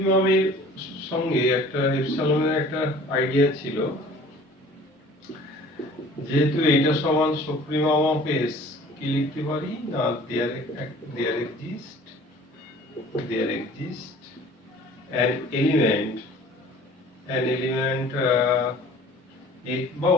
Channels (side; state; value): both; normal; correlation 0.48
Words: সঙ্গে একটা এপসাইলনের একটা আইডিয়া ছিল, যেহেতু এটা সমান সুপ্রিমম অফ এস, কি লিখতে পারি না there exist an element x বা